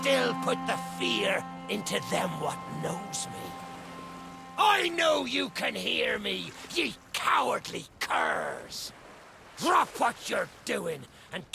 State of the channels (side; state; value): both; identical; correlation 1.00